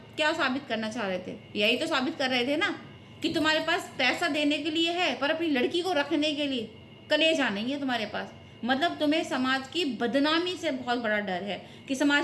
क्या साबित करना चाह रहे थे? यही तो साबित कर रहे थे ना कि तुम्हारे पास पैसा देने के लिए है, पर अपनी लड़की को रखने के लिए कलेजा नहीं है तुम्हारे पास। मतलब तुम्हें समाज की बदनामी से बहुत बड़ा डर है कि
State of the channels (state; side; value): identical; both; correlation 1.00